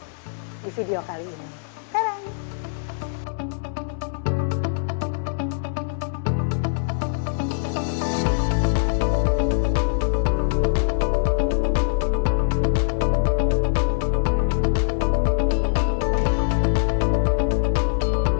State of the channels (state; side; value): silent; right; digital silence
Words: di video kali ini. Tadang!